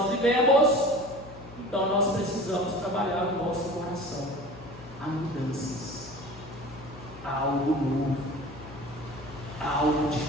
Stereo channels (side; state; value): left; noise; hum, 17 dB below the sound